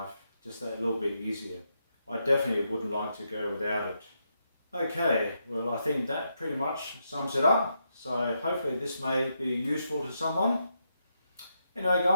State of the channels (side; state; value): both; inverted; correlation -0.82